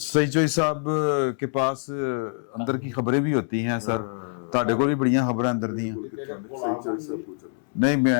चोई साहब के पास अंदर की खबरें भी होती हैं। सर ਤੁਹਾਡੇ ਕੋਲ भी बड़ियां खबरें अंदर दी हैं। नहीं,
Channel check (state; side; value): silent; right; 62 dB below the other